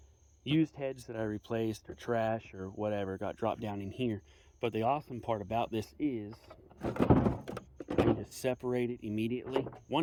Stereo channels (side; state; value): both; identical; correlation 1.00